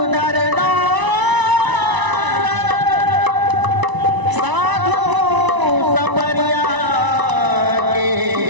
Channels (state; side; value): late; left; 1.0 ms